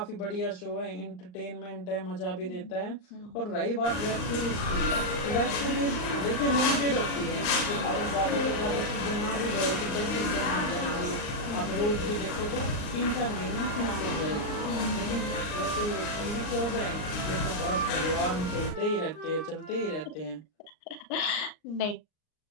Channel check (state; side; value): late; right; 39 ms